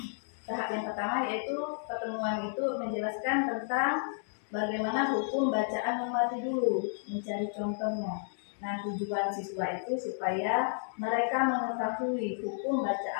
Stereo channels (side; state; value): right; silent; digital silence